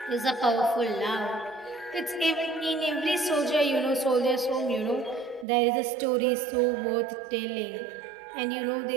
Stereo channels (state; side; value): drops out; left; at 5.5 s